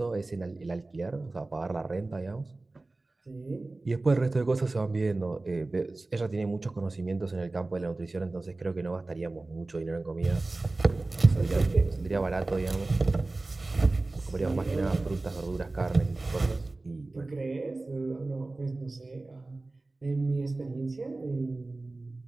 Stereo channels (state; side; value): quieter; left; 3.2 dB